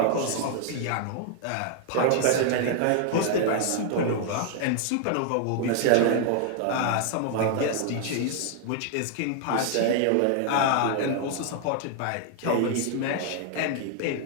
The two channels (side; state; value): both; different; correlation 0.00